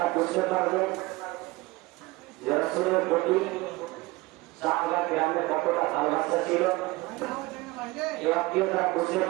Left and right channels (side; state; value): left; quieter; 21.2 dB